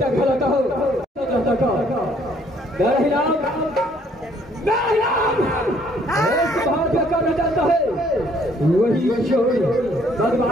खिलाता हो बाहर क्या करना चाहता है वही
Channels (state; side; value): normal; both; correlation 0.63